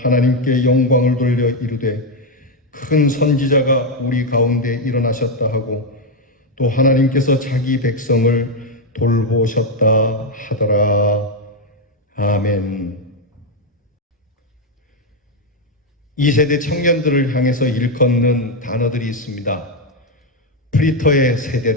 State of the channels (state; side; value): normal; both; correlation 0.04